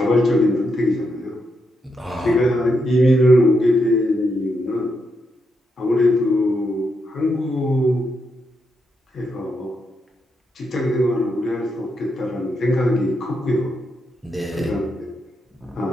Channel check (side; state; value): both; normal; correlation 0.82